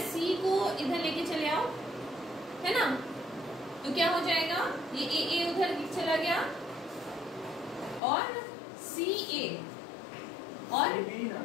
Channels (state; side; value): drops out; right; at 8.0 s